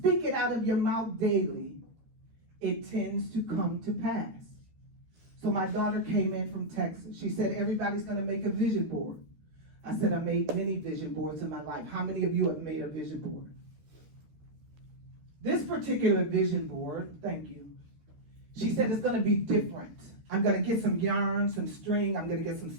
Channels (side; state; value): left; late; 13 ms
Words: it out of your mouth daily, it tends to come to pass. So my daughter came in from Texas. She said, everybody's going to make a vision board. I said, I made many vision boards in my life. How many of you have made a vision board? This particular vision board, thank you. She said it's going to be different. I'm going to get some yarn, some string. I'm going to get some